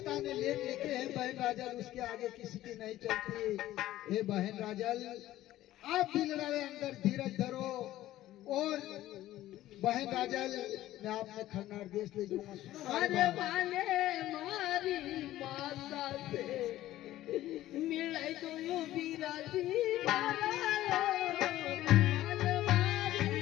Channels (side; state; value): right; quieter; 14.6 dB